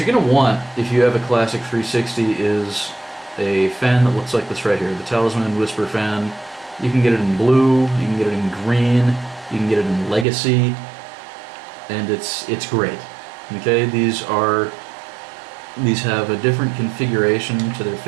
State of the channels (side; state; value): left; drops out; at 10.2 s